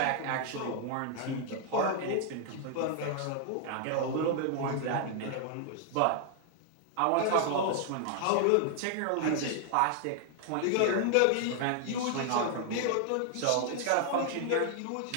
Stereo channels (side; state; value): both; different; correlation 0.00